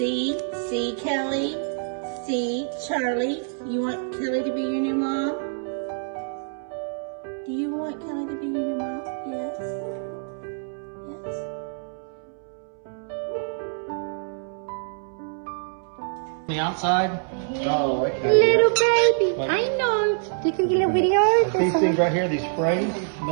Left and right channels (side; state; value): left; silent; 61 dB below the other